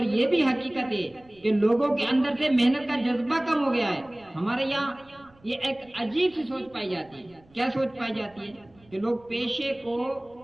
یہ بھی حقیقت ہے کہ لوگوں کے اندر سے محنت کا جذبہ کم ہو گیا ہے. ہمارے یہاں یہ ایک عجیب سی سوچ پائی جاتی ہے. کیا سوچ پائی جاتی ہے؟ کہ لوگ پیشے کو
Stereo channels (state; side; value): noise; right; rumble, 29 dB below the sound